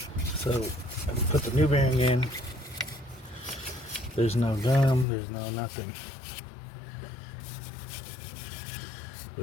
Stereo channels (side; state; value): right; drops out; at 5.1 s